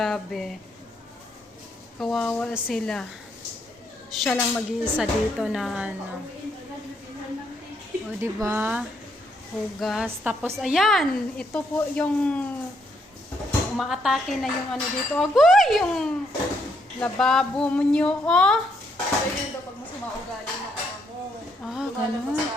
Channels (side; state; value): both; normal; correlation 0.74